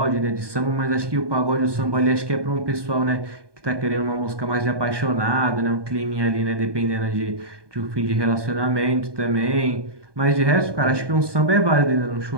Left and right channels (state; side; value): late; left; 1.2 ms